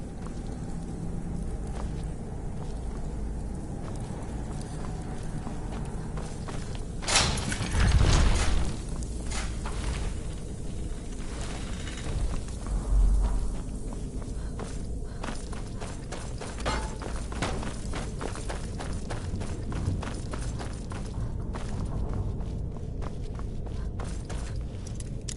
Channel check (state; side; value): identical; both; correlation 1.00